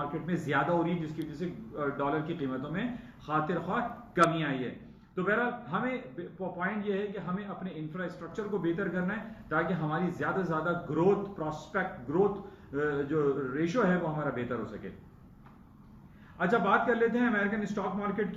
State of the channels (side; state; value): both; identical; correlation 1.00